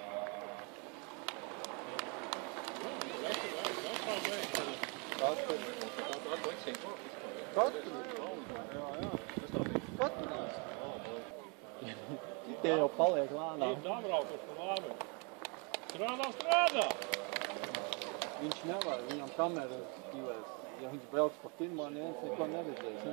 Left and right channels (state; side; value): quieter; left; 33.7 dB